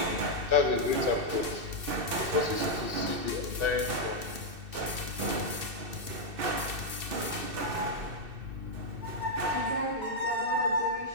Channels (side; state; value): left; late; 2.7 ms